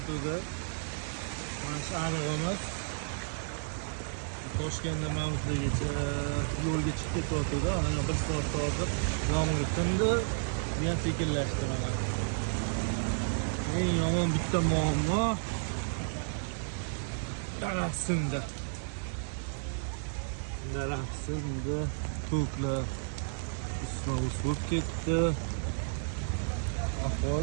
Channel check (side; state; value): left; silent; digital silence